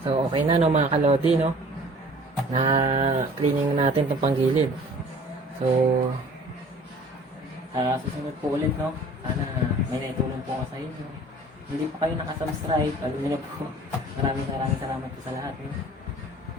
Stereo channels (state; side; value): normal; both; correlation 0.48